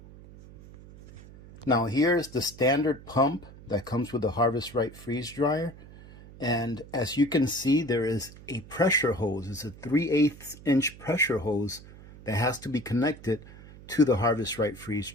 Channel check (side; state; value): right; noise; hum, 19 dB below the sound